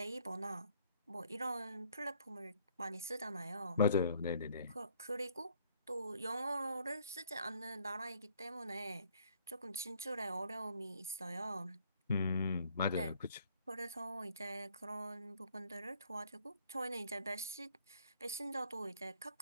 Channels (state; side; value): inverted; both; correlation -0.64